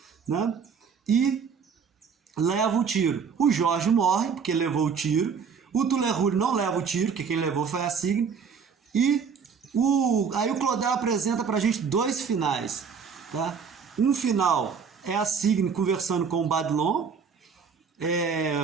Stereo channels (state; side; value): quieter; left; 6.2 dB